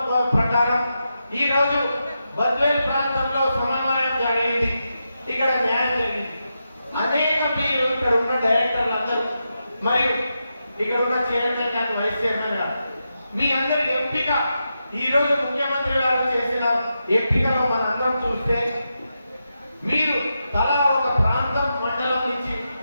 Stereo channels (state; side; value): inverted; both; correlation -0.87